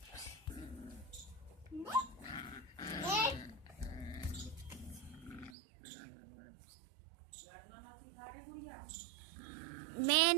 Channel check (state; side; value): drops out; left; at 5.6 s